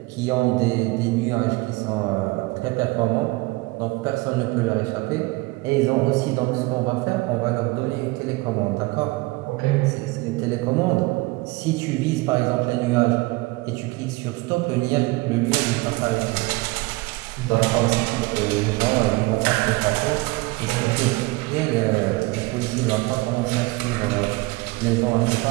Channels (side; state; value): left; quieter; 22.6 dB